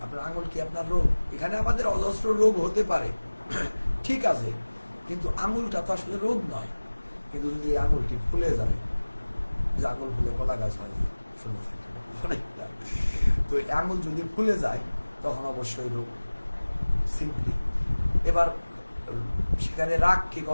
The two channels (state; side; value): inverted; both; correlation -1.00